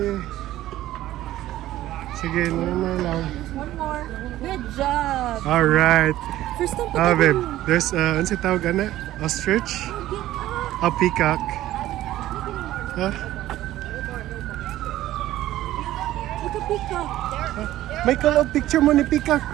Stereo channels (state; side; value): quieter; left; 14.5 dB